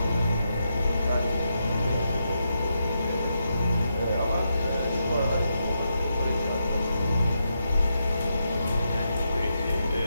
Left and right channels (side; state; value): both; inverted; correlation -0.83